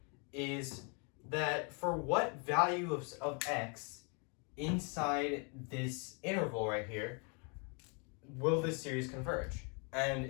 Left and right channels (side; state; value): right; quieter; 35.1 dB